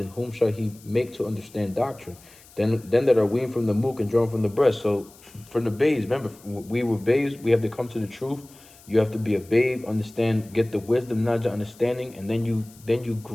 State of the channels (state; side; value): noise; left; hiss, 24 dB below the sound